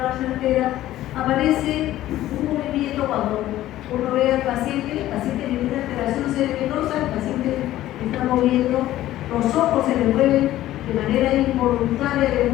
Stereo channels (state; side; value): quieter; right; 14.3 dB